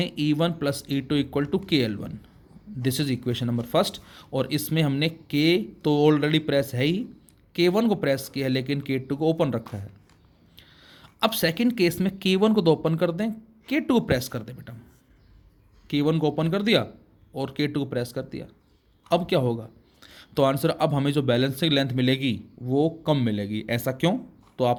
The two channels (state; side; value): identical; both; correlation 1.00